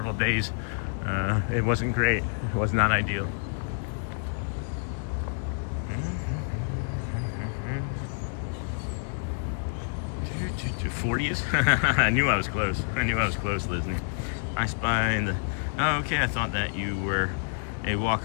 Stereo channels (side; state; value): right; silent; digital silence